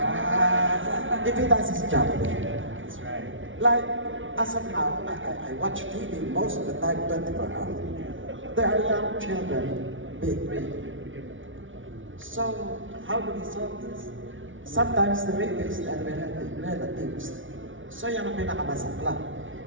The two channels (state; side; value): late; left; 0.56 ms